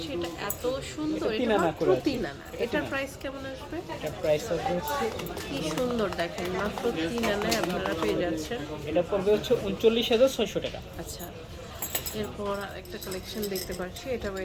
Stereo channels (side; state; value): both; identical; correlation 1.00